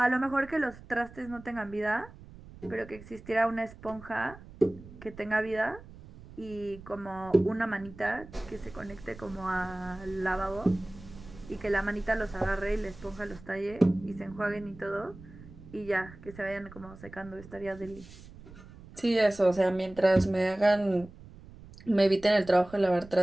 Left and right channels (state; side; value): noise; right; rumble, 18 dB below the sound